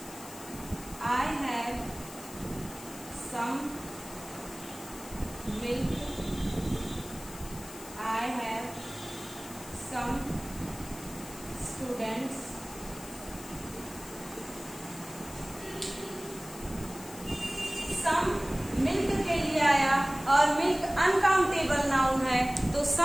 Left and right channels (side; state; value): left; noise; hiss, 15 dB below the sound